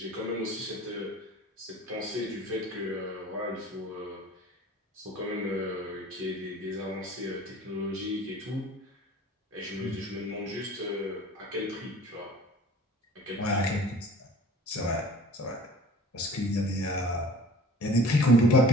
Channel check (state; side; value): normal; both; correlation 0.46